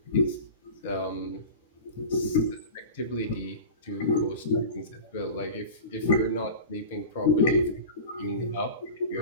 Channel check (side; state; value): both; inverted; correlation -0.33